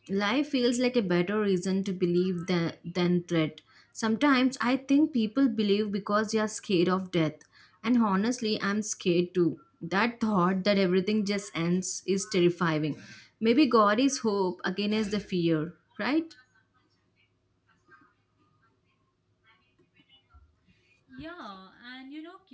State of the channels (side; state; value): both; identical; correlation 1.00